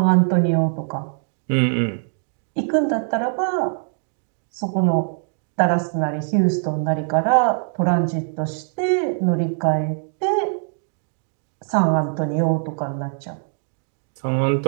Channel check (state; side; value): silent; left; digital silence